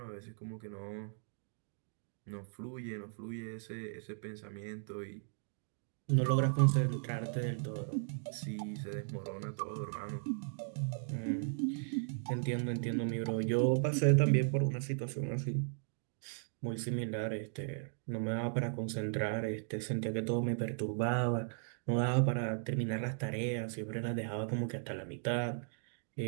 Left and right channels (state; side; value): silent; left; digital silence